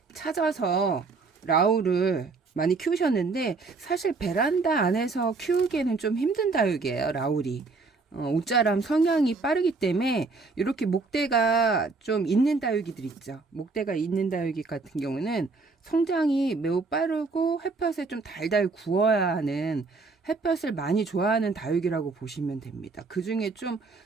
찾아서 라울을 많이 키우셨는데 사실 베란다 안에서 키우기에는 좀 힘든 다육이에요. 라울이. 옷자람 성향이 빠르기 때문에 이렇게 목대가 좀 있는 다육이들 있죠. 목대가 있는 다육이 같은 경우는 성장이 매우 빠르고 햇볕에 좀 달달 구워야 하는 햇볕을 많이 좋아하는 다육이라고 보시면 됩니다. 그 중에 좀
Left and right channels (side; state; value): left; quieter; 4.1 dB